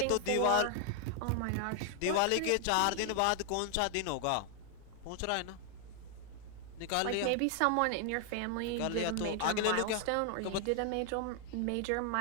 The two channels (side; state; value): both; different; correlation 0.00